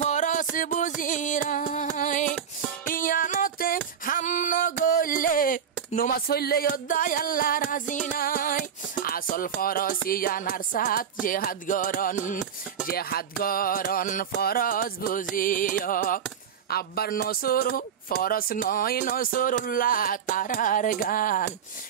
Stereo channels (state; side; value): quieter; left; 8.0 dB